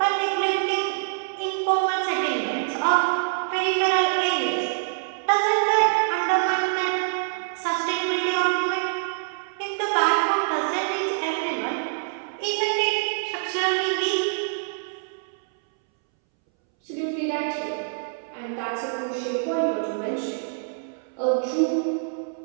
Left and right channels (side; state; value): left; silent; 62 dB below the other